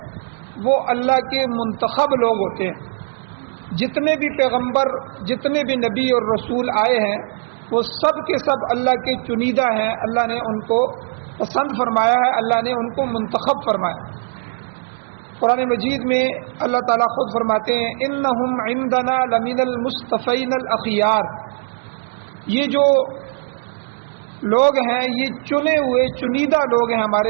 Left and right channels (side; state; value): left; silent; digital silence